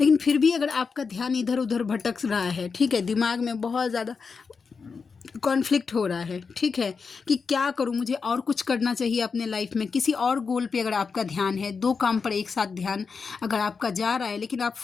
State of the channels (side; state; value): right; quieter; 5.2 dB